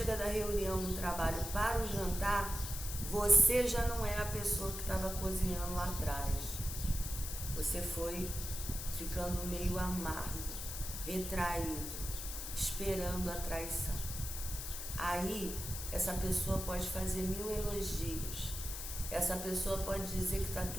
da reunião no trabalho para o jantar, você já não é a pessoa que estava cozinhando lá atrás. Você foi ficando meio amargo, retraído, esperando a traição. Aí, essa pessoa pode fazer 1000 elogios. Essa pessoa pode dizer que está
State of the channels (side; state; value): left; noise; hiss, 6 dB below the sound